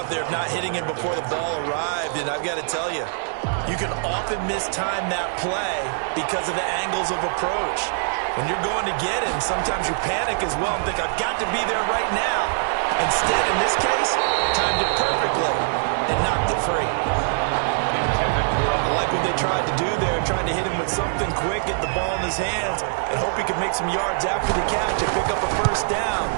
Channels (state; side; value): silent; left; digital silence